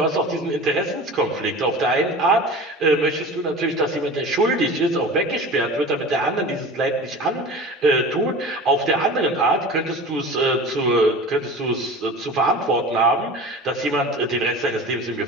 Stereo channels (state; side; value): normal; both; correlation 0.36